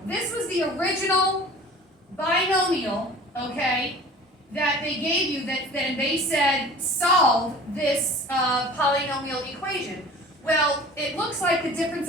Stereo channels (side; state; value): both; normal; correlation 0.43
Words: This was the original binomial, okay, that they gave you, that then they said solve this polynomial equation. Well, it looks like the difference